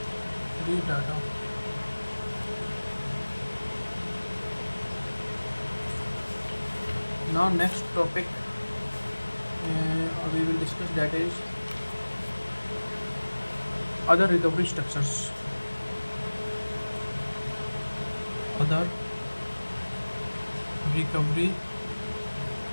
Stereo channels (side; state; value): both; inverted; correlation -1.00